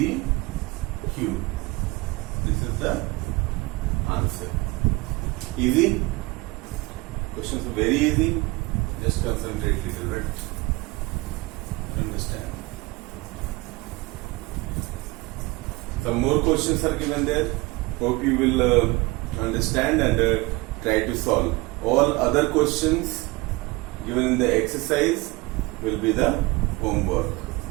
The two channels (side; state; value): left; quieter; 23.5 dB